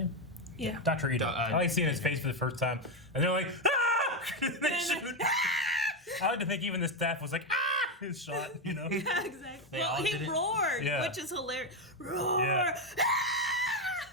Yeah. Dr. Ito. I like seeing his face for the first time, and they're like, ah! They shoot. I like to think even the staff was like, ah! His shot, you know. Yeah, exactly. They Well, all he did it. roared, Yeah. which is hilarious. Roar! Yeah.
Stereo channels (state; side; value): normal; both; correlation 0.08